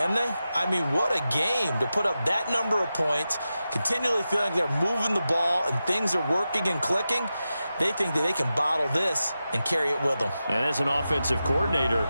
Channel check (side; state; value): both; inverted; correlation -0.92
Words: they? I mean, what a game to put up that number of points, continually feeling they're moving the ball and things are working and clicking. They think that they can bottle this and carry it with them. And as an offensive coordinator,